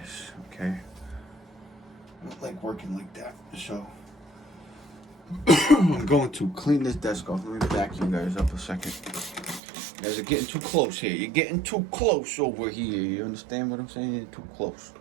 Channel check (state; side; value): drops out; left; at 9.6 s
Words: okay? I don't like working like that. So I'm going to clean this desk off. Let me back you guys up a second. You guys are getting too close here. You're getting too close over here. You understand what I'm saying? You're too close.